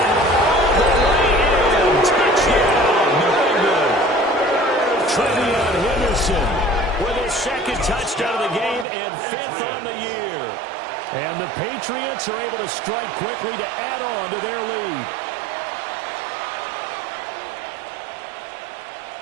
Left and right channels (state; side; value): drops out; left; at 8.8 s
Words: all the way in. Touchdown. Very good. Trevion Henderson with his 2nd touchdown of the game and 5th on the year. And the Patriots are able to strike quickly to add on to their lead.